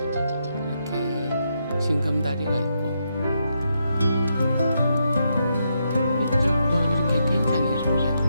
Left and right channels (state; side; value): inverted; both; correlation -0.81